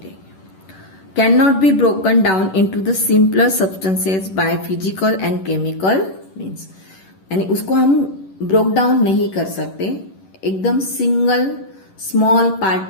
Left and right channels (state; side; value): late; right; 11 ms